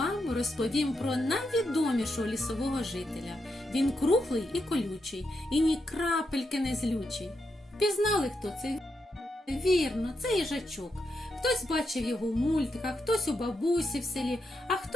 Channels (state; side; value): normal; both; correlation 0.83